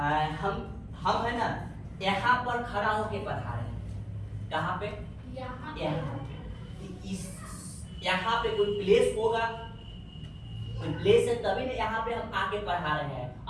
है ना, यहाँ पर खड़ा होके पढ़ा रहे हैं। कहाँ पे? यहाँ पे। इस यहाँ पे कोई प्लेस होगा, कोई प्लेस है तभी ना यहाँ पे हम आके पढ़ा रहे हैं।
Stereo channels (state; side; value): identical; both; correlation 1.00